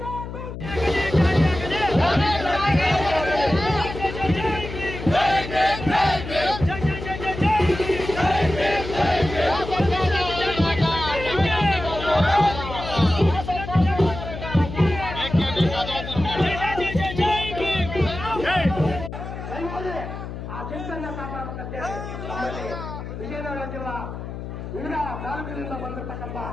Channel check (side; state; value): left; noise; hum, 9 dB below the sound